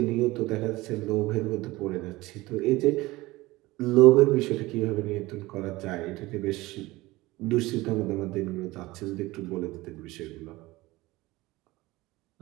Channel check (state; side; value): quieter; left; 19.9 dB